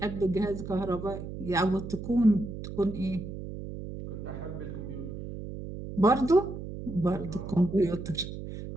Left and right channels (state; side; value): noise; right; hum, 9 dB below the sound